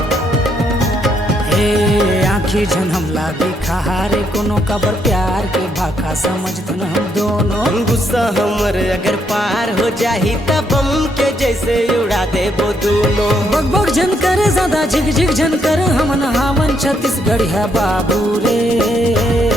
आखी झन हमला बेखार कोनो कबर प्यार के भाखा समझथन हम दोनों। गुस्सा हमर अगर पार हो जाही तब बम के जैसे उड़ा देबो दोनों। बग बग झन कर ज्यादा झिग झिग झन कर हमन हावन छत्तीसगढ़ है बाबू रे।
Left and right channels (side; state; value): both; normal; correlation 0.74